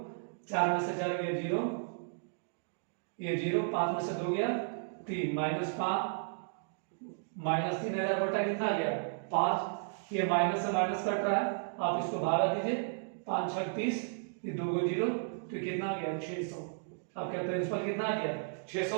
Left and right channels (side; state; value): left; silent; digital silence